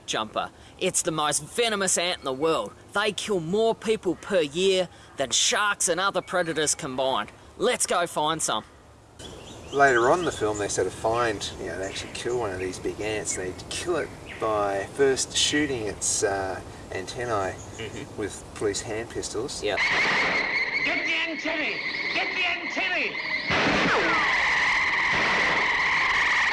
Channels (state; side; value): identical; both; correlation 1.00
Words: Jumper. It's the most venomous ant in the world. They kill more people per year than sharks and other predators combined. Let's go find some. Later on in the film, they sort of find, they actually kill one of these big ants. They kill it by first shooting its antennae with police hand pistols. Yep. Get the antennae! Get the antennae!